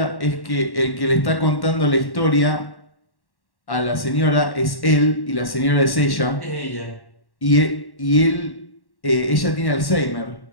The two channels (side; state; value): right; late; 1.1 ms